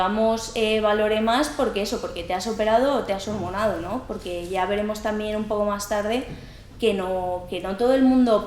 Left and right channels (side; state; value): both; identical; correlation 1.00